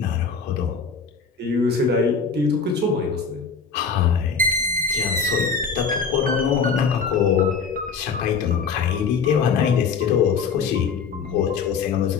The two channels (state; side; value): quieter; right; 5.6 dB